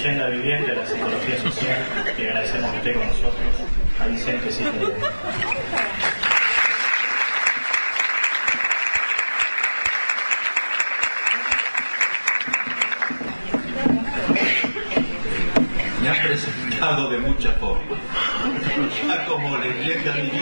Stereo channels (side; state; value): both; inverted; correlation -1.00